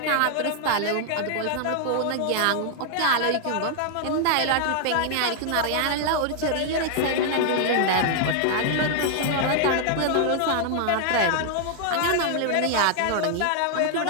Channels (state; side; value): different; both; correlation 0.00